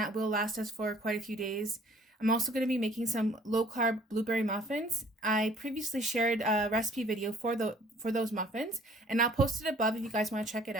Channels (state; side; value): normal; both; correlation 0.56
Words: will last us for quite a few days. I'm also going to be making some low-carb blueberry muffins. I previously shared a recipe video for those muffins, and I'll post it above if you guys want to check it